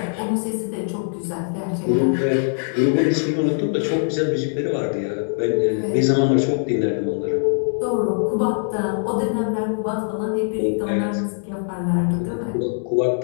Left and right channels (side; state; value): right; silent; 64 dB below the other